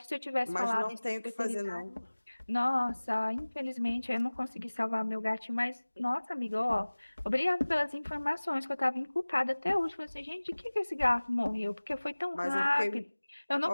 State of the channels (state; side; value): inverted; both; correlation -1.00